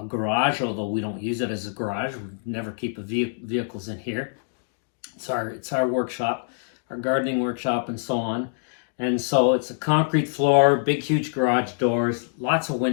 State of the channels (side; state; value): right; silent; digital silence